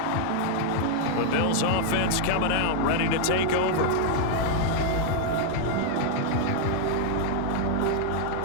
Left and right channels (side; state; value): both; different; correlation -0.01